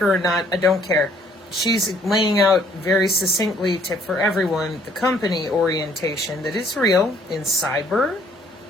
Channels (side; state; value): both; normal; correlation 0.62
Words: or not, I don't care. She's laying out very succinctly for everyone the company orientation that is real in cyber,